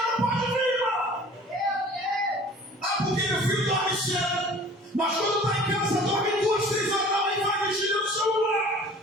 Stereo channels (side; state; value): both; normal; correlation 0.47